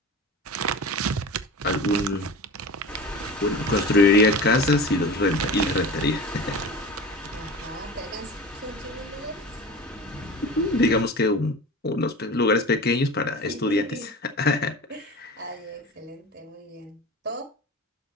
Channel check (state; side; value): normal; both; correlation 0.33